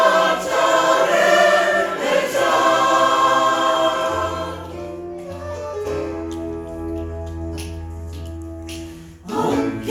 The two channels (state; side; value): identical; both; correlation 1.00